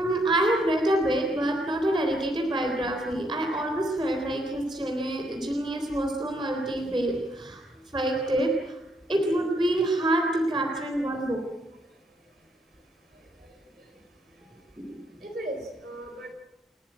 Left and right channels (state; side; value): normal; both; correlation 0.73